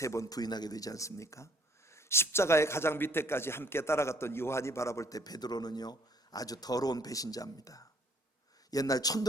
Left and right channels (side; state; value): both; normal; correlation 0.62